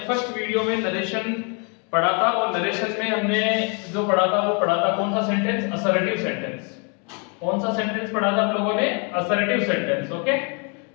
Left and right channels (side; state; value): right; quieter; 35.9 dB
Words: फर्स्ट वीडियो में नरेशन पढ़ा था और नरेशन में हमने जो पढ़ा था वो पढ़ा था कौन सा सेंटेंस? Assertive sentence. कौन सा सेंटेंस पढ़ा था आप लोगों ने? Assertive sentence. ओके,